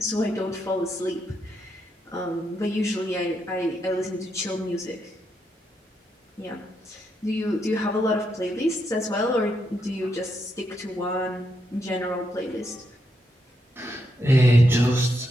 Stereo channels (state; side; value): normal; both; correlation 0.81